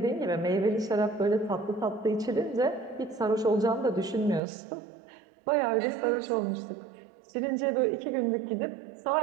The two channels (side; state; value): left; drops out; at 4.4 s